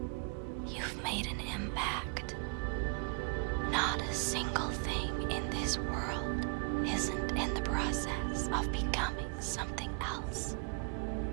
You've made an impact. Not a single thing in this world isn't in the process of becoming something else.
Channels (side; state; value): left; quieter; 35.6 dB